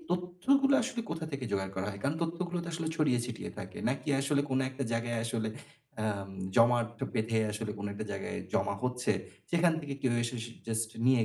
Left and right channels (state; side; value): identical; both; correlation 1.00